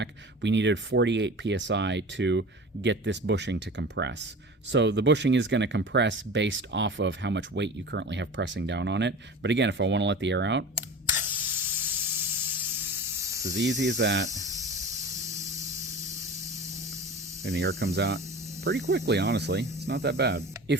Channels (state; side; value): normal; both; correlation 0.36